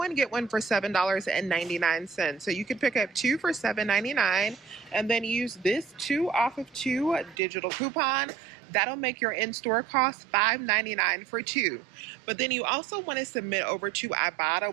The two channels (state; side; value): drops out; left; at 7.4 s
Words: get one for $7.99. So you could pick up two for $7.99 and then use this 2 off of 2 digital coupon. That'll make your in-store cost $5.99 for two. But then you also want to submit over to Ibotta.